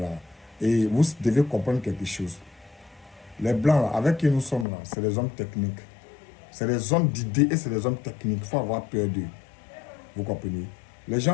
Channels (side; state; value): right; drops out; at 4.7 s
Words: Et vous devez comprendre quelque chose. Les Blancs, là, avec qui nous sommes là, c'est des hommes techniques. C'est des hommes d'idées et c'est des hommes techniques. Il faut avoir peur d'eux. Vous comprenez? Les